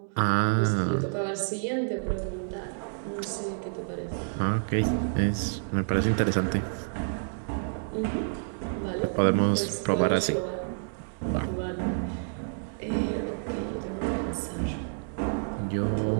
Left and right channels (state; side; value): silent; left; digital silence